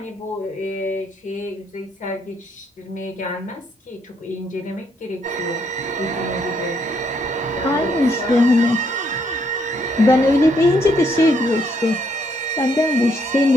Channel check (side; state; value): both; normal; correlation 0.72